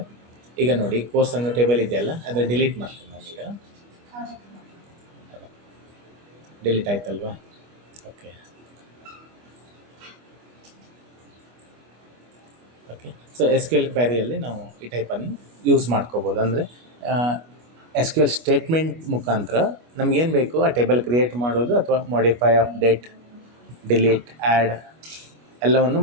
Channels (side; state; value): left; late; 25 ms